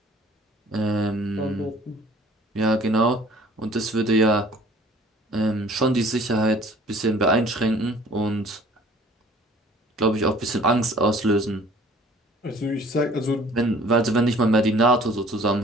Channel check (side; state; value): both; normal; correlation 0.52